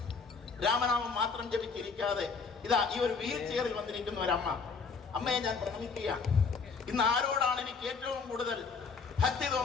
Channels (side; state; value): right; quieter; 5.1 dB